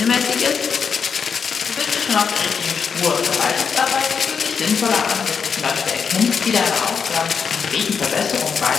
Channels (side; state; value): right; quieter; 6.2 dB